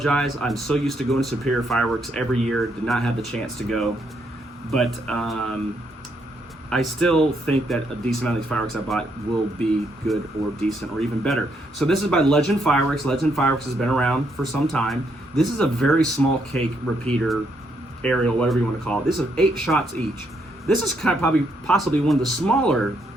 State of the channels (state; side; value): normal; both; correlation 0.75